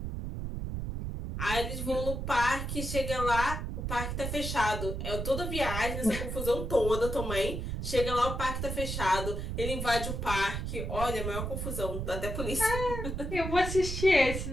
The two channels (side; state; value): right; noise; rumble, 4 dB below the sound